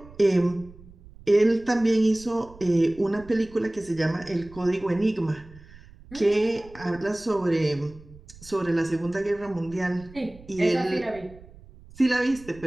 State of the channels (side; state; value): right; noise; rumble, 21 dB below the sound